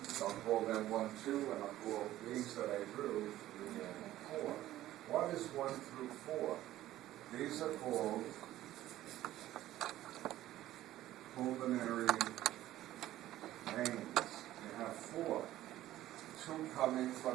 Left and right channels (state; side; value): quieter; left; 14.3 dB